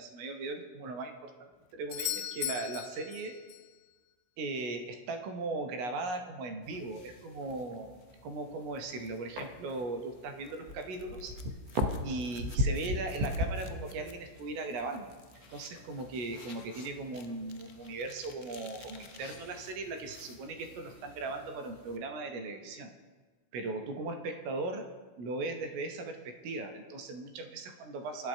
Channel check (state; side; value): late; left; 16 ms